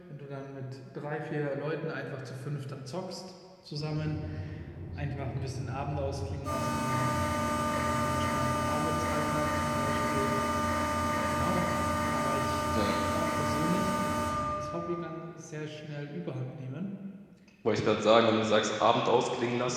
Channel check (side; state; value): both; identical; correlation 1.00